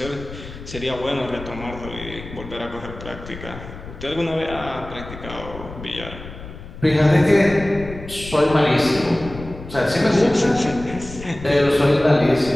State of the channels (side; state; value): left; noise; rumble, 13 dB below the sound